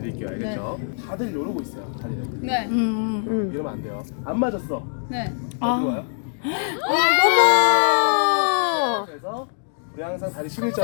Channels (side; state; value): right; silent; digital silence